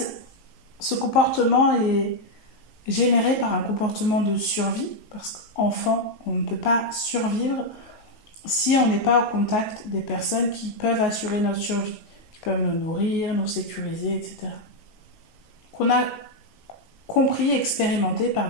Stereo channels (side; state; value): right; late; 19 ms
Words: ce comportement est généré par un comportement de survie, parce qu'enfant, on ne peut pas survivre si on n'est pas au contact des personnes qui peuvent assurer notre survie, qui peuvent nous nourrir, nous sécuriser, etc. Qu'on a compris, expérimenté par